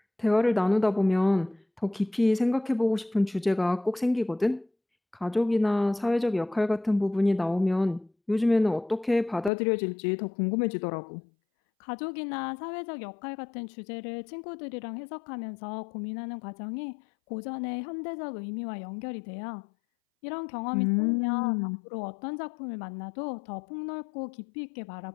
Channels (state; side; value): drops out; right; at 9.5 s